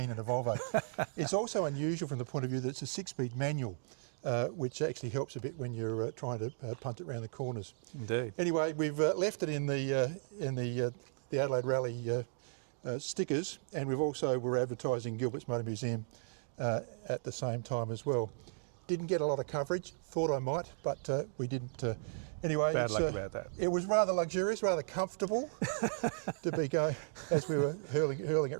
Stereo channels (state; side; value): silent; left; digital silence